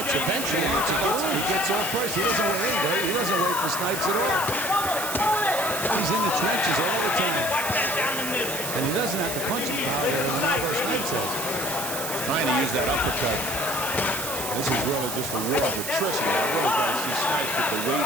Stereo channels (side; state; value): right; noise; hiss, 5 dB below the sound